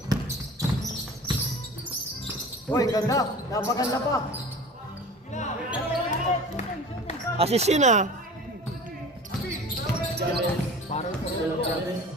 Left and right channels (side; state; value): both; normal; correlation 0.39